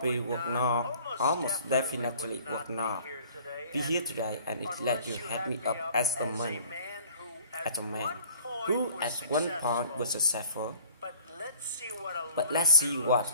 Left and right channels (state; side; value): inverted; both; correlation -0.51